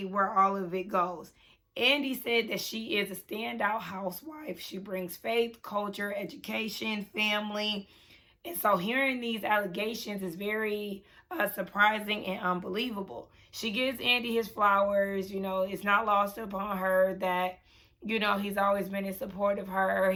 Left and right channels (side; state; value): both; identical; correlation 1.00